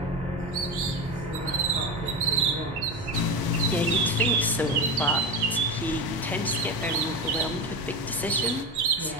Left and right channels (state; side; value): normal; both; correlation 0.21